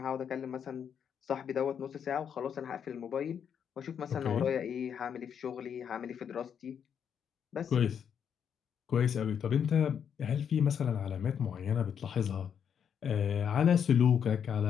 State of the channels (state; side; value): quieter; right; 7.9 dB